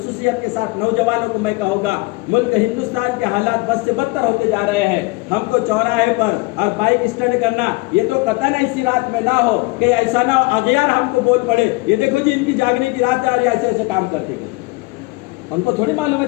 کے ساتھ نوجوانوں کو میں کہوں گا، ملک ہندوستان کے حالات بد سے بدتر ہوتے جا رہے ہیں۔ ہم کو چوراہے پر اور بائک اسٹنٹ کرنا، یہ تو قطعاً ایسی رات میں نہ ہو کہ ایسا نہ ہو اغیار ہم کو بول پڑے، یہ دیکھو جی ان کی جاگنے کی رات ہے اور یہ ایسے ایسے کام کرتے گئے۔ ان کو تھوڑی معلوم ہے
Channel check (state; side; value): quieter; right; 24.9 dB